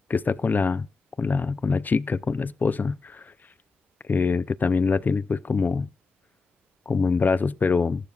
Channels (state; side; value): quieter; right; 4.3 dB